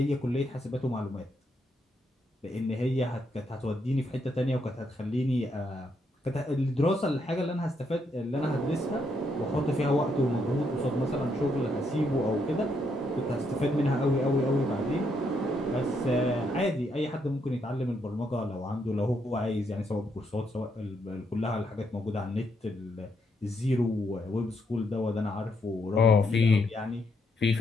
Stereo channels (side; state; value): both; normal; correlation 0.76